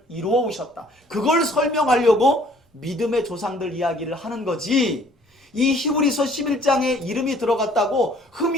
이루어 오셨다. 그걸 설명하려고 믿음의 조상들 이야기를 하는 거지, 이 히브리서 11장에 이름이 들어갔다고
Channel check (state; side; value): normal; both; correlation 0.57